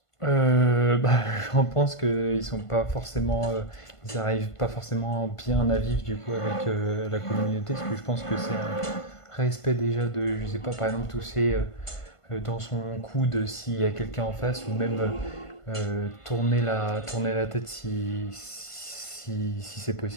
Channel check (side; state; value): right; late; 1.5 ms